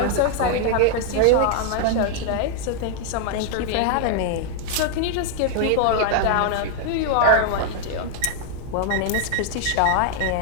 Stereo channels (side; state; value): both; different; correlation 0.00